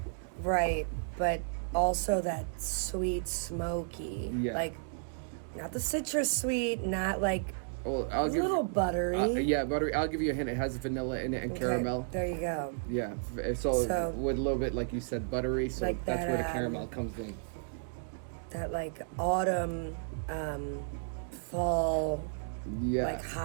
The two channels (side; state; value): left; silent; digital silence